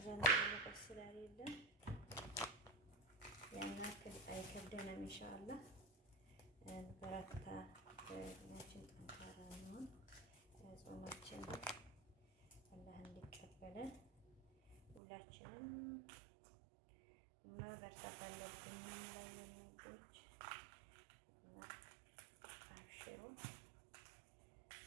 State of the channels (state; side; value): drops out; left; at 15.0 s